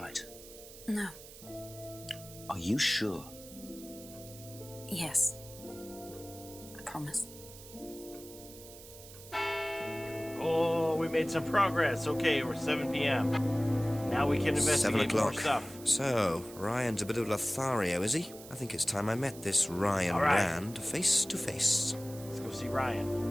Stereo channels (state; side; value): noise; right; hiss, 17 dB below the sound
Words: No. Are you sure? Yes. I promise. Oh, we made some progress. Okay, we're 7 p.m. Now we can 7 investigate more o'clock. stuff. So, Ryan's a bit of Lothario, is he? I think it's time I met this Ryan All right. Rand face to face. Let's go see Ryan.